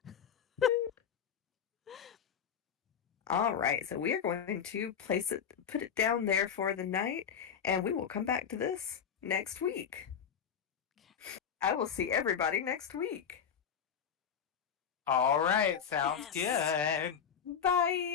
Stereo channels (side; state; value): right; quieter; 7.7 dB